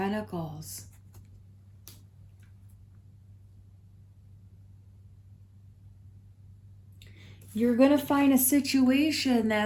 You're going to find a situation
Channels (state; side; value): identical; both; correlation 1.00